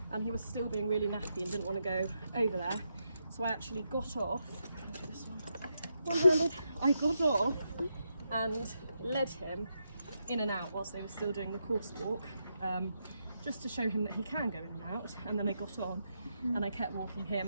and he was still being really nappy and didn't want to go over there. So I actually got off, I'll do this one. I got off and led him in and out whilst they were still doing the course walk, just to show him that he can go in and out. And then I got on and I kept walking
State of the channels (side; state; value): both; inverted; correlation -0.83